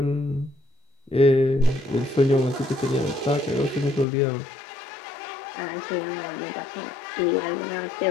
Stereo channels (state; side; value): drops out; right; at 4.0 s